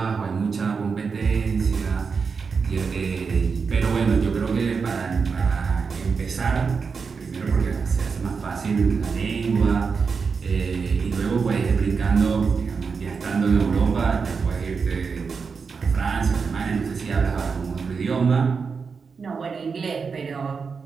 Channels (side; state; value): left; quieter; 5.3 dB